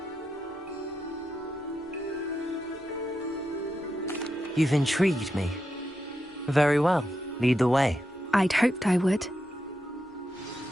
You've intrigued me. Very well. Lead the way. I'd hoped I would.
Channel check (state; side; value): normal; both; correlation 0.86